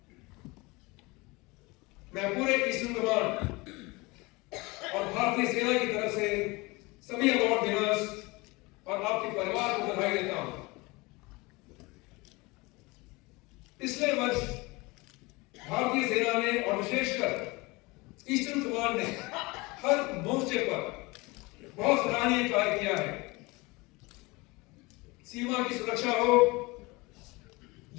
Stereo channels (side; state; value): right; quieter; 24.2 dB